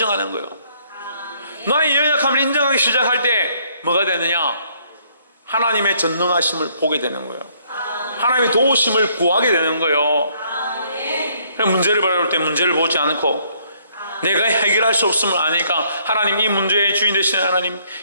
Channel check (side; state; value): both; inverted; correlation -0.66